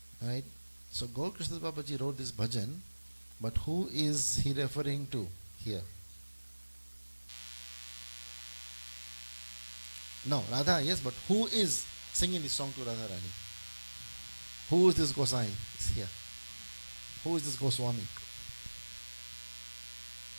Alright. So Gaur Krishna Babaji wrote this bhajan, but who is he referring to here? No, Radha, yes, but who is singing this song to Radharani? Who is this Gosai? Is here. Who is this Goswami?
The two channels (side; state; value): both; inverted; correlation -1.00